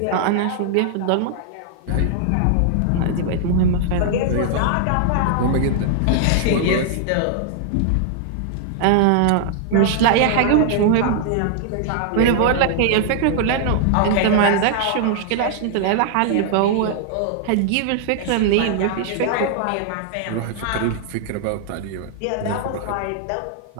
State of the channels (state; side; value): different; both; correlation -0.01